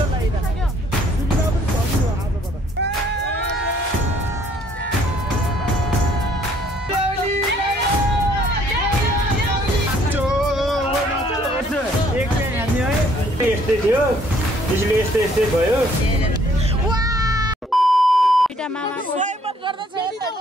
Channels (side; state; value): both; normal; correlation 0.62